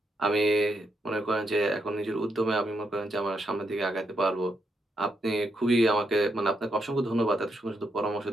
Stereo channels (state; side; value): normal; both; correlation 0.80